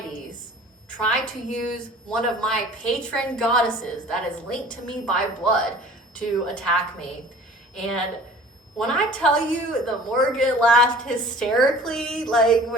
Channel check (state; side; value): normal; both; correlation 0.46